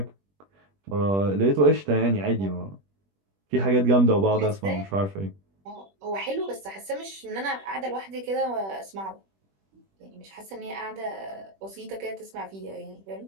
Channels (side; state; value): left; late; 21 ms